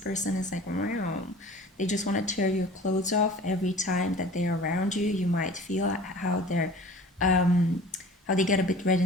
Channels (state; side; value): normal; both; correlation 0.43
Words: is like, wow, they just want to tear your clothes off every time that they're around you. You might feel how they're how they get a bit red